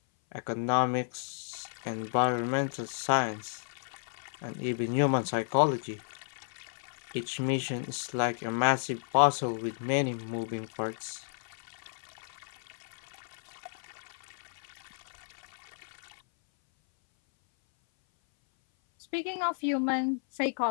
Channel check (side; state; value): right; silent; 56 dB below the other